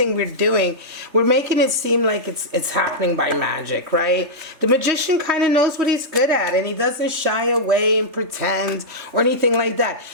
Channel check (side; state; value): left; late; 3.4 ms